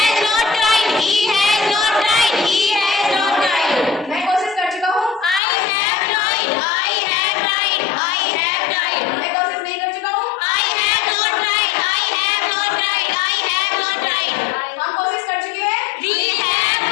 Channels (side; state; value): right; drops out; at 5.4 s